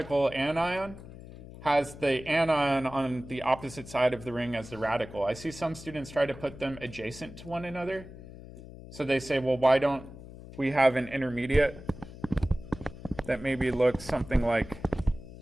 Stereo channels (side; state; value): left; noise; hum, 15 dB below the sound